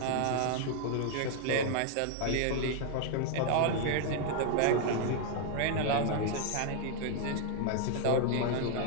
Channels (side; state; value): both; different; correlation 0.00